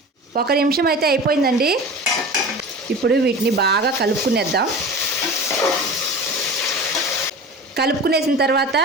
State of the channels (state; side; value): normal; both; correlation 0.34